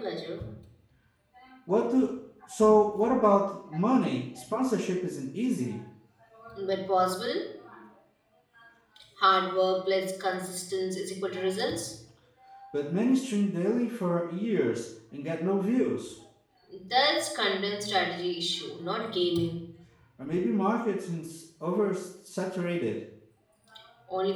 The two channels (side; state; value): both; identical; correlation 1.00